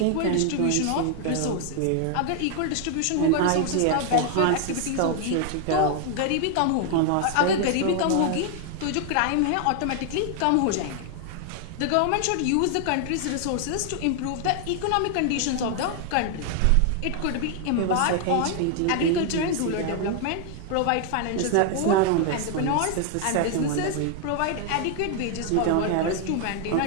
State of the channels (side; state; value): both; different; correlation 0.00